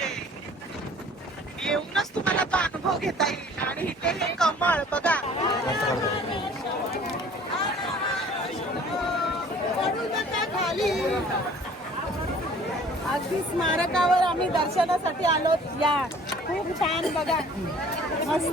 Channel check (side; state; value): both; normal; correlation 0.51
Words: येऊनच तुम्हाला तो अनुभव घेता येईल. आणि इथे हे कमळ बघा. खाली अगदी स्मारकावर आम्ही दर्शनासाठी आलो. या खूप छान बघा,